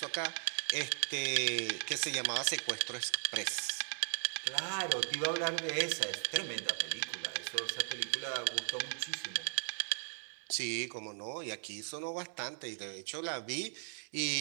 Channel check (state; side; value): silent; left; digital silence